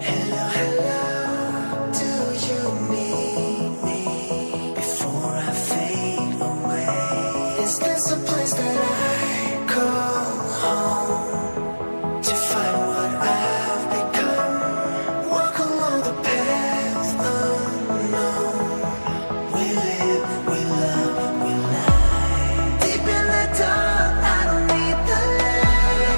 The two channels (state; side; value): inverted; both; correlation -1.00